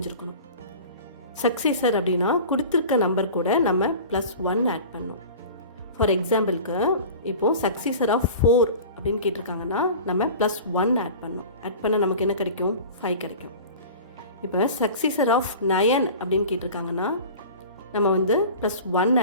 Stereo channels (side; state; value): both; inverted; correlation -0.38